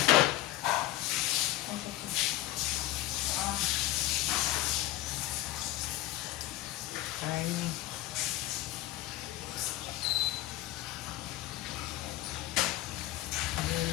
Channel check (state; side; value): quieter; right; 15.6 dB